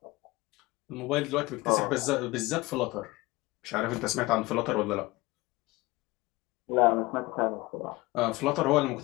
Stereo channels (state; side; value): quieter; right; 21.3 dB